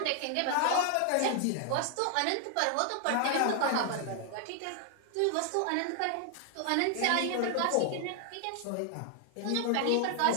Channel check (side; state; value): both; different; correlation 0.00